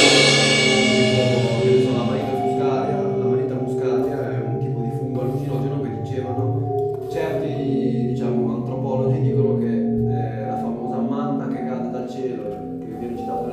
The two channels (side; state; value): both; identical; correlation 1.00